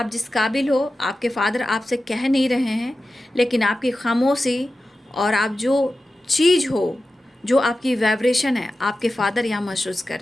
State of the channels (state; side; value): normal; both; correlation 0.93